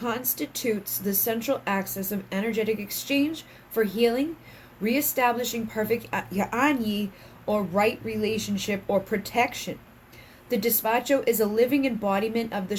the central axis of energetic exchange for healing, reestablishing perfect Anyi, or right relationship, or protection. The despacho is a living embodiment of the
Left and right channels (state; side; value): identical; both; correlation 1.00